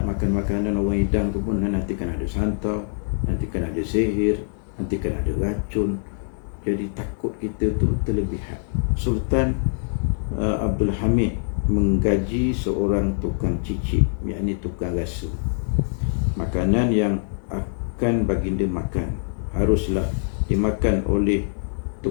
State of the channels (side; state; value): right; silent; digital silence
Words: makan makanan orang hidang tu pun nanti kan ada santau, nanti kan ada sihir, nanti kan ada racun. Jadi takut kita tu terlebihan. Sultan Abdul Hamid menggaji seorang tukang cicip, yakni tukang rasa. Makanan yang akan baginda makan haruslah dimakan oleh